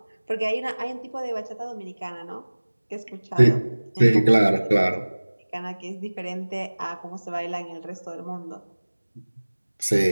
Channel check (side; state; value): both; inverted; correlation -1.00